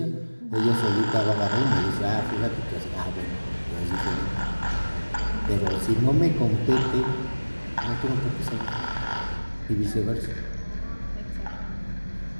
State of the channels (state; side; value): inverted; both; correlation -1.00